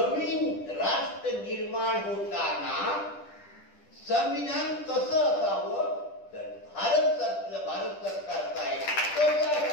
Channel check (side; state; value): right; late; 10 ms